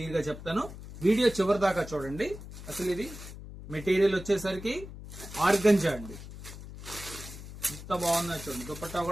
గా చెప్తాను. వీడియో చివరి దాకా చూడండి. అసలు ఇది మెటీరియల్ వచ్చేసరికి ఆర్గంజా అండి. ఎంత బాగుందో చూడండి. దుపట్టా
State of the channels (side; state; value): left; noise; hum, 13 dB below the sound